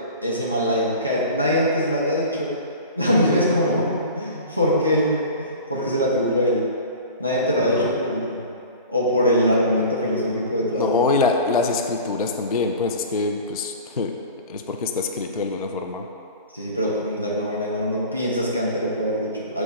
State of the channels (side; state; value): both; inverted; correlation -0.38